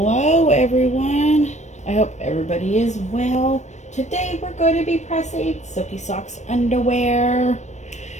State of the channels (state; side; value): late; right; 0.34 ms